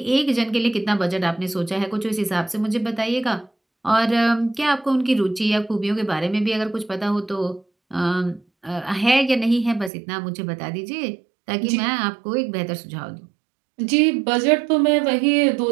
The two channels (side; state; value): left; drops out; at 9.9 s